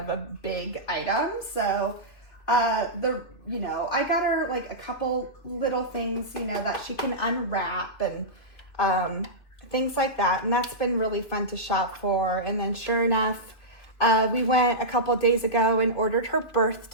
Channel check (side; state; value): right; late; 3.2 ms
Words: a big item. So I got her like a couple little things, that she can unwrap and things like that. And that's been really fun to shop for. And then sure enough, we went a couple of days ago and ordered her